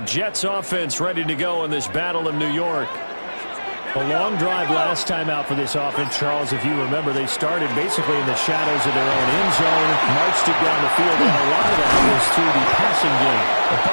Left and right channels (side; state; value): both; inverted; correlation -1.00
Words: Jets offense ready to go in this battle of New York. A long drive last time out for this offense, Charles. If you remember, they started basically in the shadows of their own end zone, marched it down the field, and a lot of that was through the passing game. The